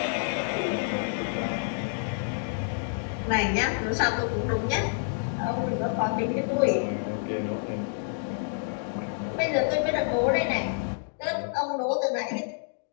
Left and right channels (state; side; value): silent; right; digital silence